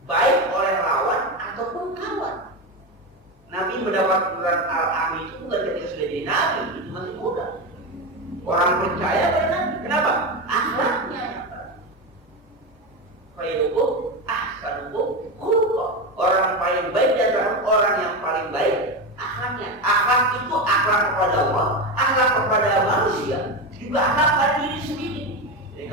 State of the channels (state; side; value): normal; both; correlation 0.16